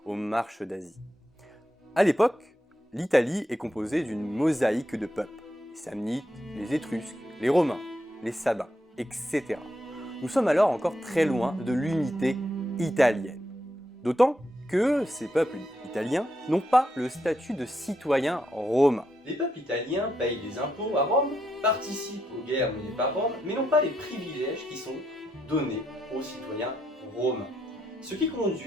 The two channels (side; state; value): both; normal; correlation 0.80